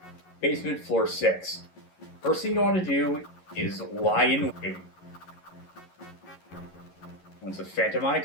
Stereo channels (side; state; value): right; late; 11 ms